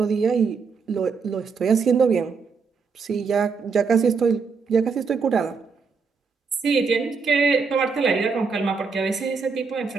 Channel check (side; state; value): left; quieter; 5.2 dB